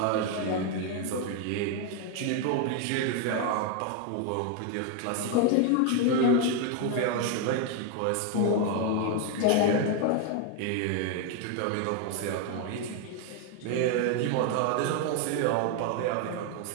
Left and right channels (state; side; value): different; both; correlation 0.01